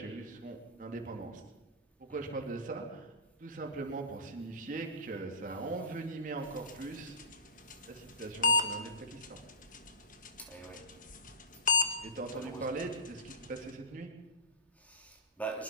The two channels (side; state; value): both; normal; correlation -0.20